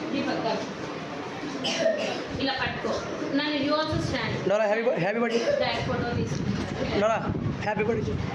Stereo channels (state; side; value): identical; both; correlation 1.00